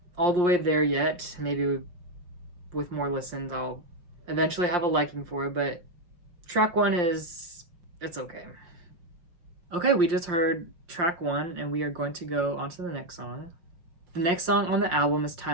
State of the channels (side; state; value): left; late; 5.7 ms